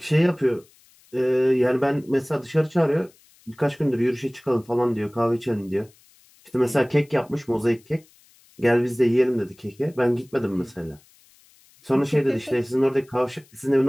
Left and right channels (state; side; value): noise; left; hiss, 30 dB below the sound